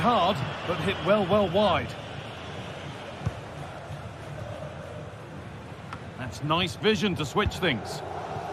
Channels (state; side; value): identical; both; correlation 1.00